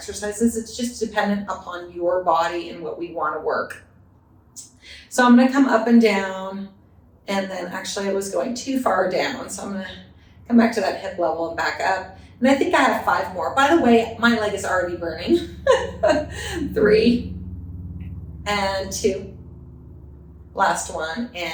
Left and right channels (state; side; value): identical; both; correlation 1.00